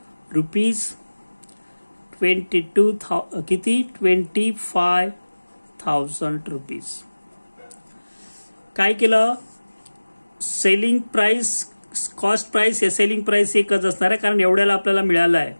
रुपीज 22,000 किती 25,000 रुपीज काय केलं सेलिंग प्राइस कॉस्ट प्राइस या सेलिंग प्राइस एकच असणार आहे कारण एवढ्याला आपल्याला मिळालं आहे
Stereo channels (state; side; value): inverted; both; correlation -1.00